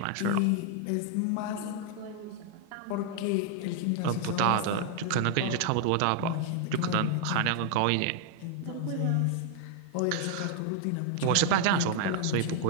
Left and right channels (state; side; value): different; both; correlation 0.00